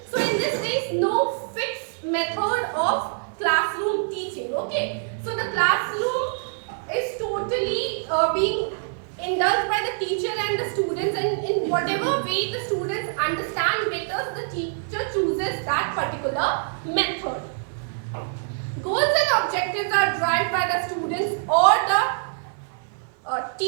So in this there is no fixed method of classroom teaching. Okay, so the classroom is totally being indulged by the teacher and the students, and in whatever way the students understand better, the teacher chooses that particular method. Goals and objectives are derived by the students or the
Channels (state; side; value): silent; left; 62 dB below the other